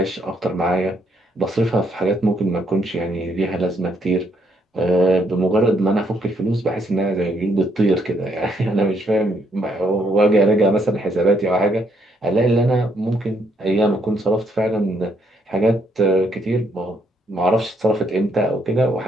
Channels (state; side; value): normal; both; correlation 0.72